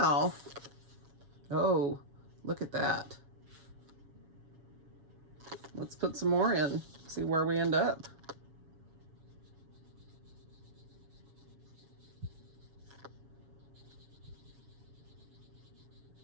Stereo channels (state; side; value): late; left; 7.2 ms